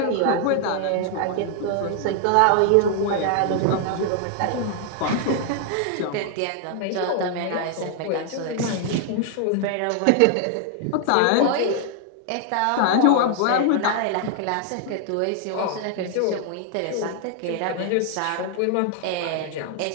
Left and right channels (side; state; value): both; different; correlation 0.00